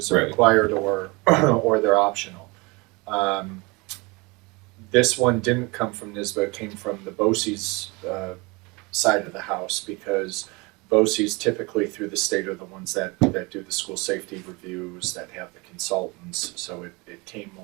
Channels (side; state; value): left; quieter; 26.3 dB